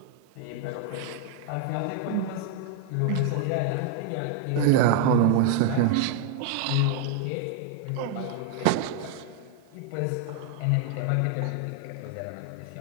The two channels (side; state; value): both; different; correlation 0.00